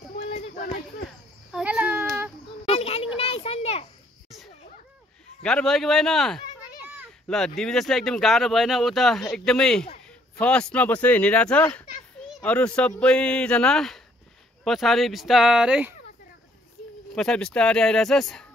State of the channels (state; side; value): normal; both; correlation 0.65